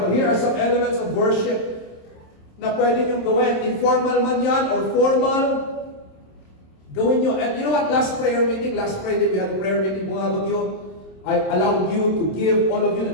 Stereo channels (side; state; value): right; late; 27 ms